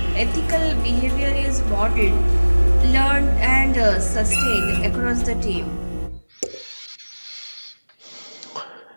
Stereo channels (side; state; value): both; inverted; correlation -1.00